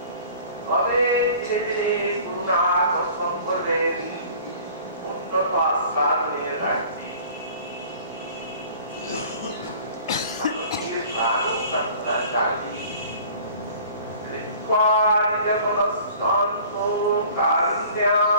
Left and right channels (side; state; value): both; inverted; correlation -0.47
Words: তবে ধীরে ধীরে করুণা দর্শন করলেন উন্নত আস্বাদনের রাজ্যে। প্রাণ প্রার্থনা জাগি